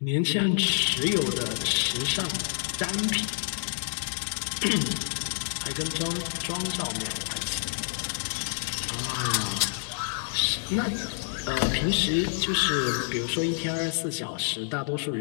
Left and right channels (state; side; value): silent; right; digital silence